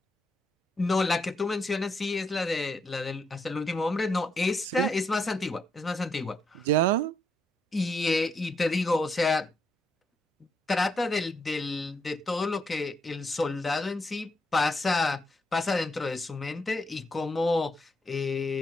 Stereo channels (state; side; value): normal; both; correlation 0.77